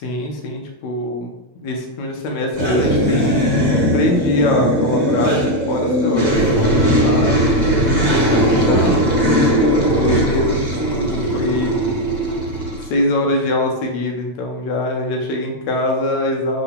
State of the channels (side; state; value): right; late; 8.9 ms